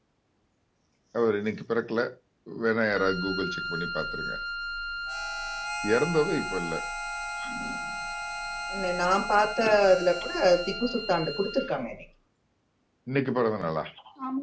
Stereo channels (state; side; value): identical; both; correlation 1.00